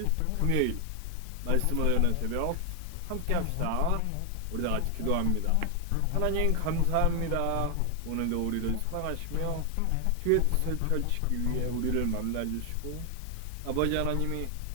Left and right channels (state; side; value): different; both; correlation 0.00